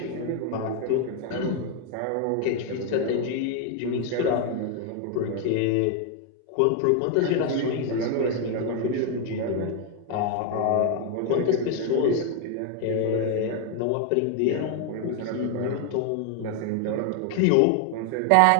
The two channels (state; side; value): different; both; correlation 0.01